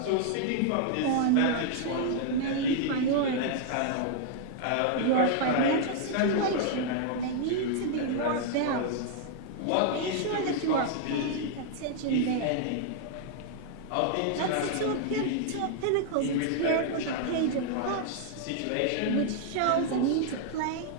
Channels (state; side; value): different; both; correlation -0.01